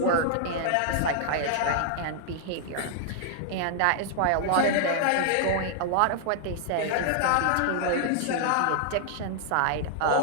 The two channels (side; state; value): both; different; correlation -0.01